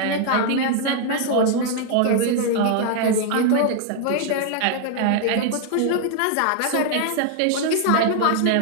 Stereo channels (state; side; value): different; both; correlation 0.00